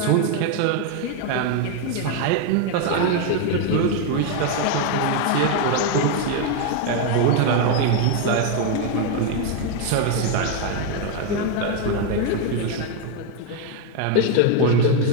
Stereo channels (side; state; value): both; different; correlation 0.01